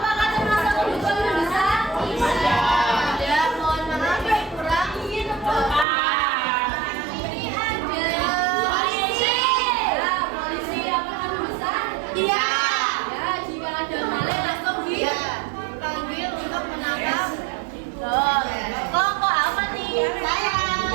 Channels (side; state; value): left; drops out; at 5.9 s